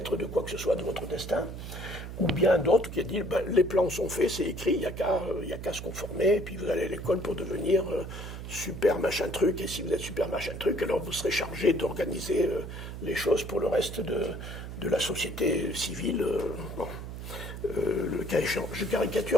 de quoi que ce soit de votre destin. Ou bien d'autres qui a dit les plans sont faits, c'est écrit, il n'y a qu'à se conformer, et puis vous allez à l'école pour devenir super machin truc, et si vous êtes super machin truc, alors vous serez chargé d'organiser les choses pour le reste de la société civile. Bon. Le cas échéant, je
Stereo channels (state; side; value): noise; right; hum, 9 dB below the sound